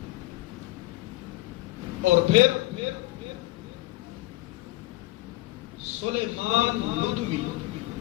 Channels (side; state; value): right; quieter; 18.5 dB